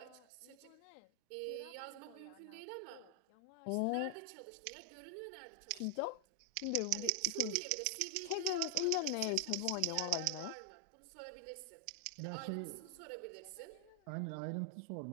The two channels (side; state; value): both; different; correlation 0.00